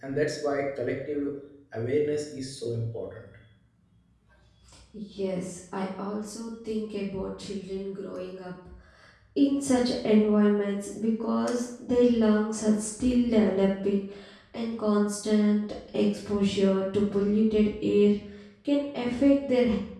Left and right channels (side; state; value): both; identical; correlation 1.00